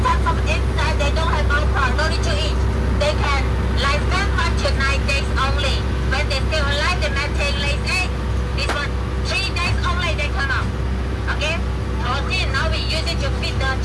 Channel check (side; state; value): both; identical; correlation 1.00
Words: types of insects, they don't have alcohol, no need to eat. They can lifespan 5 to 9 days only. When they still alive, they maintain lays egg. This one, 3 days only they come out. Okay? Protein, now we use it to feed the